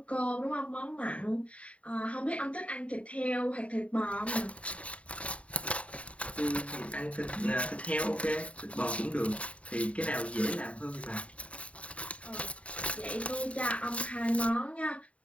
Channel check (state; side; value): late; right; 0.065 ms